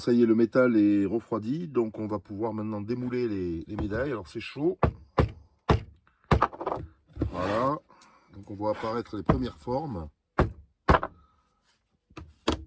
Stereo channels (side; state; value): both; identical; correlation 1.00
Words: y est, le métal est refroidi, donc on va pouvoir maintenant démouler les médailles. Alors, c'est chaud. Voilà. Donc, on voit apparaître les premières formes.